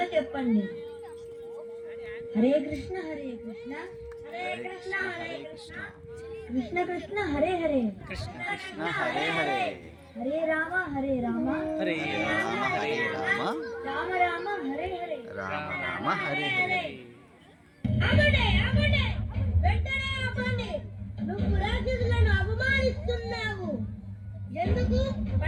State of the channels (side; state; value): both; identical; correlation 1.00